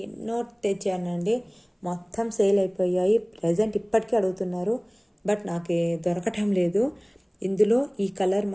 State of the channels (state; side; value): identical; both; correlation 1.00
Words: ఎన్నో తెచ్చానండి, మొత్తం సేల్ అయిపోయాయి. ప్రజెంట్ ఇప్పటికీ అడుగుతున్నారు, బట్ నాకు దొరకటం లేదు. ఇందులో ఈ కలర్